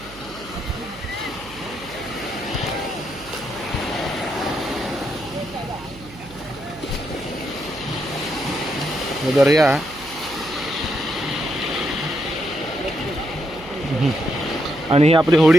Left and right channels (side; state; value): right; noise; hum, 18 dB below the sound